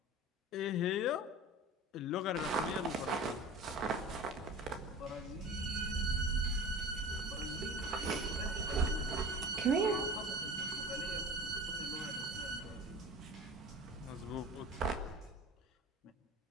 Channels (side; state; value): both; normal; correlation 0.37